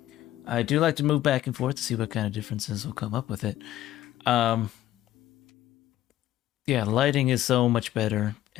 I do like to move back and forth to see what kind of differences will come up with it. Yeah, lighting is so much better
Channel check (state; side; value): quieter; right; 13.5 dB